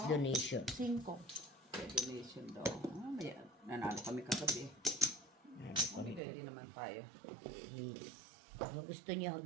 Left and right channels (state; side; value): drops out; left; at 6.2 s